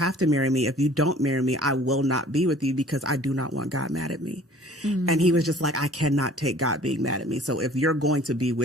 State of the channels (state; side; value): normal; both; correlation 0.51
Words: to marry me. If you don't marry me, I will not be with you, because I do not want God mad at me. And he was just like, I cannot take God being mad at me. So if you're going to be